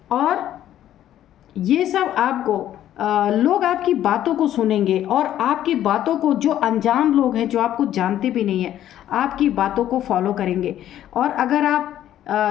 और ये सब आपको लोग आपकी बातों को सुनेंगे, और आपकी बातों को जो अनजान लोग हैं, जो आपको जानते भी नहीं हैं, आपकी बातों को फॉलो करेंगे। और अगर आप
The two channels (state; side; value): quieter; right; 11.9 dB